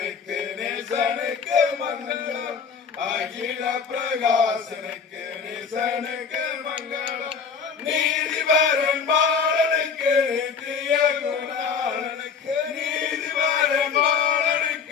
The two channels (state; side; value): quieter; right; 6.0 dB